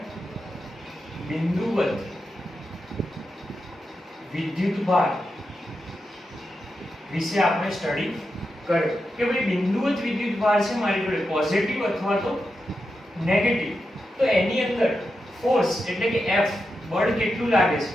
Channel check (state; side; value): normal; both; correlation 0.88